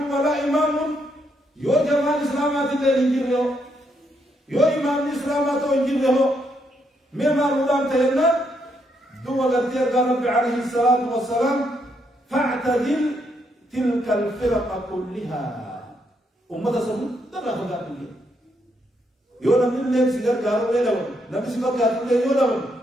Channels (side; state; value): both; normal; correlation 0.76